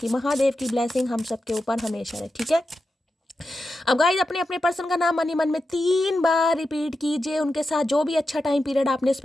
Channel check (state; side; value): normal; both; correlation 0.90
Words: महादेव की ब्लेसिंग हम सबके ऊपर हमेशा रहे, ठीक है। अब गाइज अपने अपने पर्सन का नाम मन ही मन में 3 बार रिपीट कीजिए। उनके साथ जो भी अच्छा टाइम पीरियड आपने